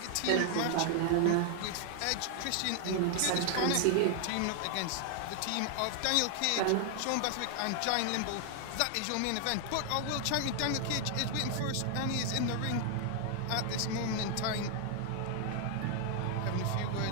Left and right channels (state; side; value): different; both; correlation 0.00